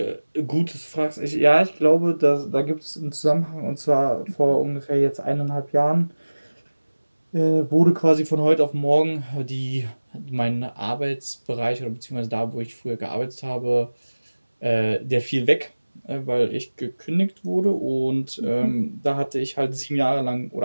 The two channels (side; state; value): both; inverted; correlation -1.00